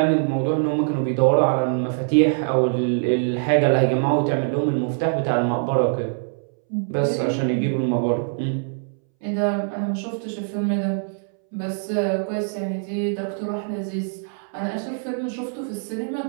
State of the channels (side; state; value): left; silent; 63 dB below the other